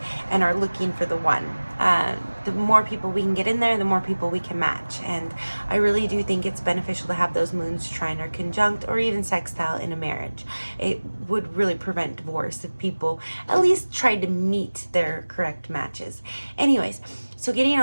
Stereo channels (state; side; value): inverted; both; correlation -1.00